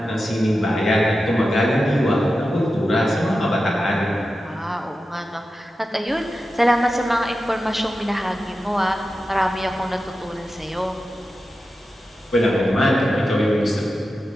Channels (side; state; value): both; normal; correlation 0.92